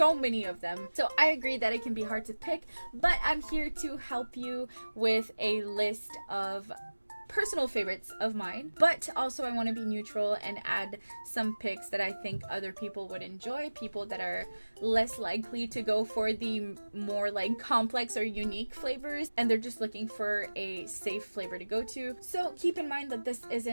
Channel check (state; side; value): inverted; both; correlation -1.00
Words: many of them. So I agree that it can be hard to pick, but I'm here to help you with a list of personal favorites of mine, but also I want to be neutral and add some picks that I think other people would enjoy, people that are less likely to go for the more like complex or unique flavors, and they're just looking for a safe flavor to go to. So keep in mind that this